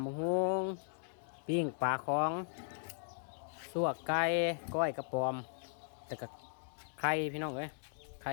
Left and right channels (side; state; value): right; silent; digital silence